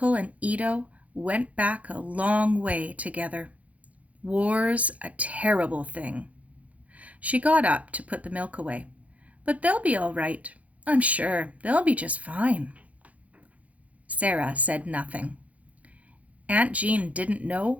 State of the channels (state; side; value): late; left; 0.068 ms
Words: and Ito went back a long way together. War's a terrible thing." She got up to put the milk away. "But they'll be all right. I'm sure they'll be just fine." Sara said nothing. Aunt Jean didn't